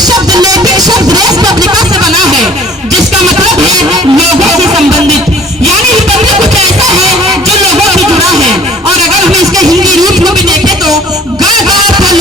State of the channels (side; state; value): both; normal; correlation 0.52